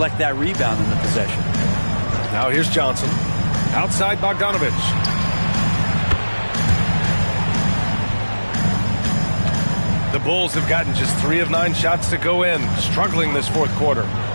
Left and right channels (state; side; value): inverted; both; correlation -1.00